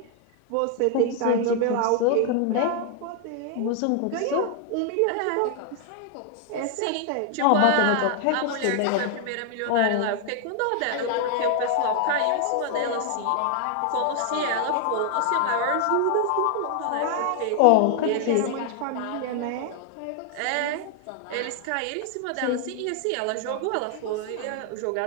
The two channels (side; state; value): both; different; correlation 0.00